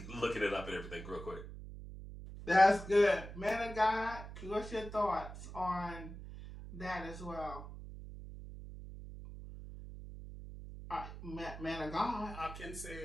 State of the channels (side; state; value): right; noise; hum, 11 dB below the sound